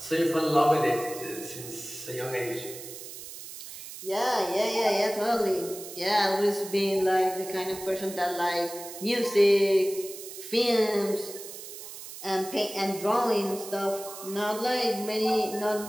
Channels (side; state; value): right; noise; hiss, 12 dB below the sound